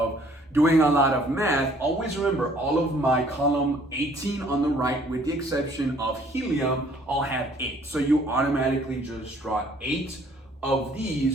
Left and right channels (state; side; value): normal; both; correlation 0.59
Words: doing a lot of math, always remember all of my column 18 on the right, with the exception of helium, all have 8. So you automatically just draw 8 of